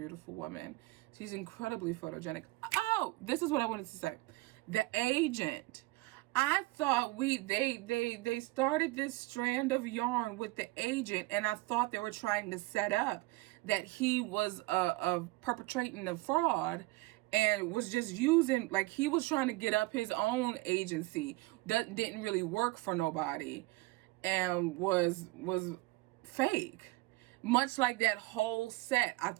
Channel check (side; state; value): left; quieter; 21.4 dB